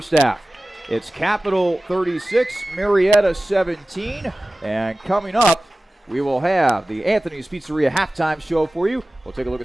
half, it's Capital 36, Marietta 17. And coming up, we will have the Anthony's Pizzeria halftime show for you. We'll take a look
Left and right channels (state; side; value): normal; both; correlation 0.96